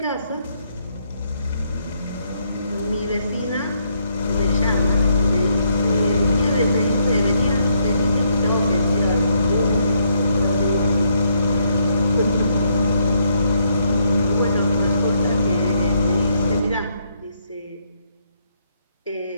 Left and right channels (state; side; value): inverted; both; correlation -0.73